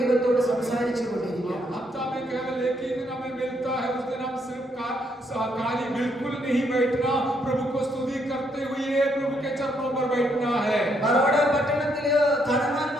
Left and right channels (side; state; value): both; normal; correlation 0.74